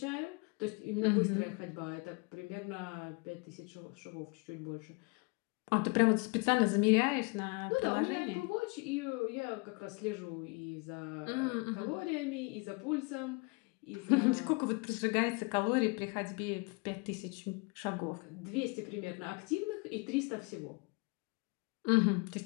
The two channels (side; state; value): right; quieter; 30.2 dB